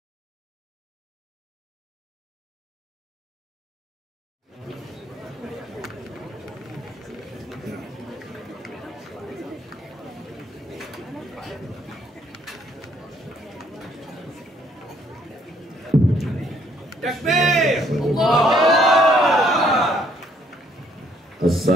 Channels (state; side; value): normal; both; correlation 0.66